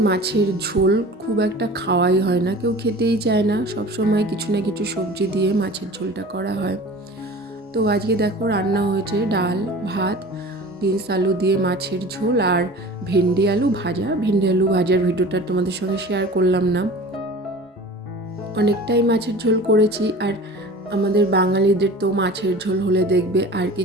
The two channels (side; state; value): both; normal; correlation 0.39